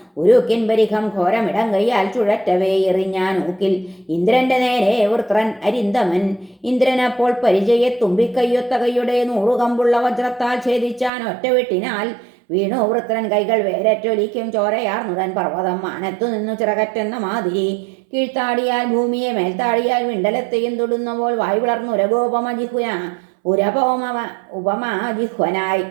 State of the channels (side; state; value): left; drops out; at 11.1 s